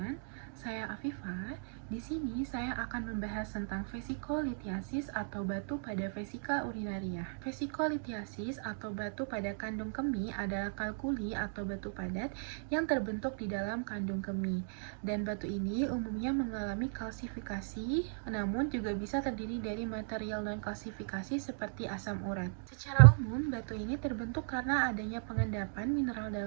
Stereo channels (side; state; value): left; silent; digital silence